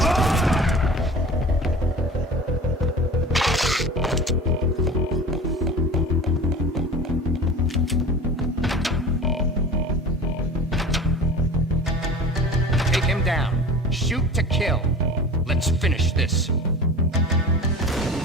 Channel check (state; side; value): normal; both; correlation 0.37